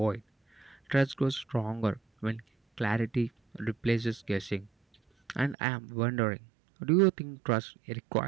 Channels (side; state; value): left; drops out; at 5.6 s